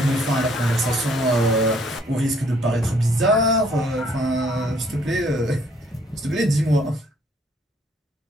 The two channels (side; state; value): both; normal; correlation 0.64